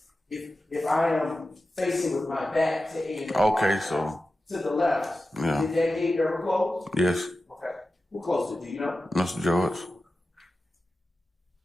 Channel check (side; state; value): both; normal; correlation 0.93